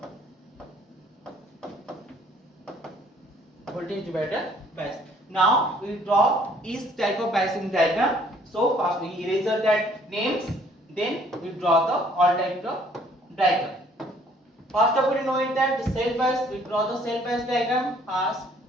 Voltage divider bias. Now we draw each type of biasing diagram. So first we erase that names, then we draw the all type of diagram. First of all, we know it that the self bias, we draw the self bias diagram. First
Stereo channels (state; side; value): normal; both; correlation 0.60